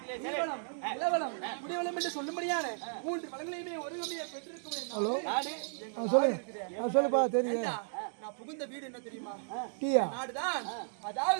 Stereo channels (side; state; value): left; silent; digital silence